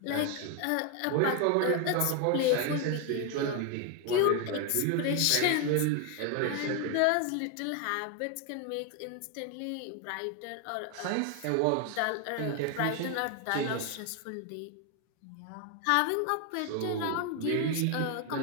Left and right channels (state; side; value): different; both; correlation 0.01